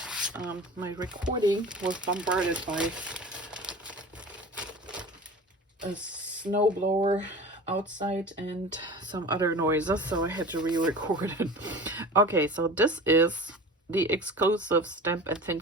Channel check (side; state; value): both; normal; correlation 0.36